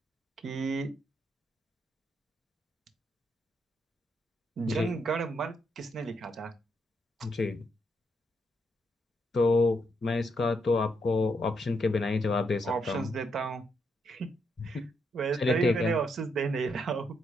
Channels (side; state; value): both; normal; correlation 0.78